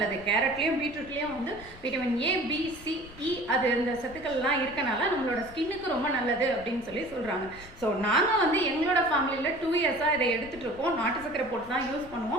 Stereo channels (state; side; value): noise; left; rumble, 20 dB below the sound